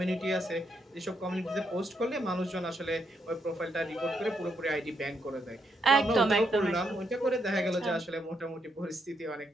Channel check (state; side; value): normal; both; correlation 0.78